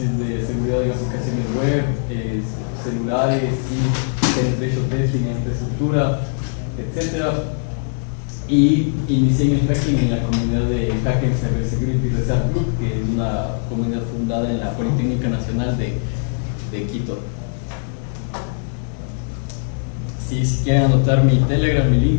de seguridad de aplicaciones web, celulares, sí, penetration testing en infraestructura, etc. Y inicié en el hacking en la comunidad de Hacking Cybersecurity Research Group, que es una comunidad fundada en la Politécnica Nacional de Quito. Sí, si quieren anotar mi Telegram, mi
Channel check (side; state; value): right; silent; 65 dB below the other